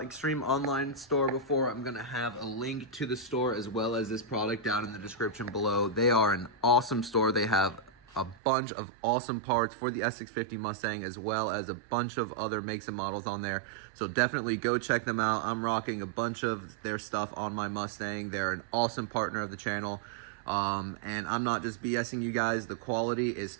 Extreme Online Store before, I'm gonna have a link to the store as well as this product down in the description below. They are an awesome store. They have a bunch of awesome parts for the S650 Mustang as well as a bunch of other makes and models on there. So definitely go check them out. I'm rocking a bunch of their stuff on my Mustang. They're an awesome partner of the channel. And I'm not just BSing you guys, the quality is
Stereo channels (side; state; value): left; drops out; at 8.3 s